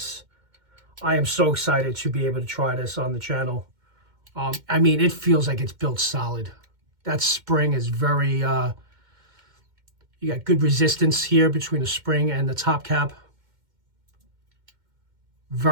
I am so excited to be able to try this on the channel. I mean, it feels like it's built solid. That spring is very, you got good resistance here between the spring and the top cap.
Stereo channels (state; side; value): late; left; 2.1 ms